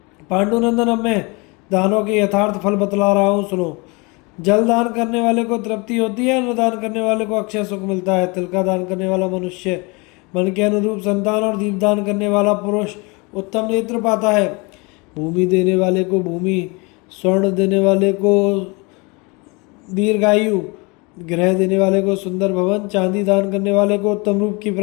पांडुनंदन, अब मैं दानों के यथार्थ फल बतला रहा हूँ, सुनो। जल दान करने वाले को तृप्ति होती है, अन्न दान करने वाले को अक्षय सुख मिलता है। तिल का दान करने वाला मनुष्य मन के अनुरूप संतान और दीप दान करने वाला पुरुष उत्तम नेत्र पाता है। भूमि देने वाले को भूमि, स्वर्ण देने वाले को दीर्घायु, गृह देने वाले को सुंदर भवन, चांदी दान करने वाले को उत्तम रूप की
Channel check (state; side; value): quieter; right; 28.1 dB